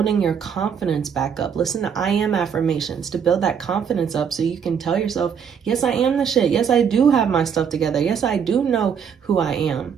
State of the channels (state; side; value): quieter; left; 7.3 dB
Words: your confidence back up. Listen to I am affirmations to build that confidence up, so you can tell yourself, yes, I am the shit. Yes, I do have my stuff together. Yes, I do know who I am.